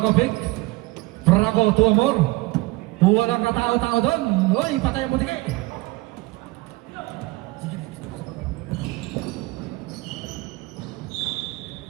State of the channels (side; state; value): left; quieter; 21.7 dB